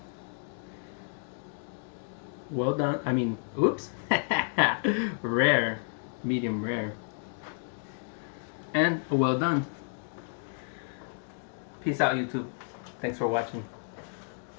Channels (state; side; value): silent; right; digital silence